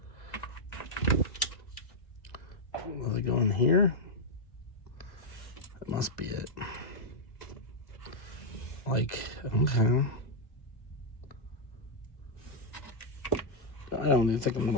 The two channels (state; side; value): late; right; 2.7 ms